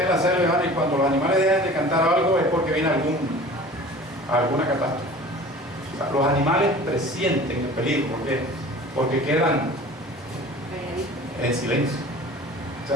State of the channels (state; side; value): normal; both; correlation 0.42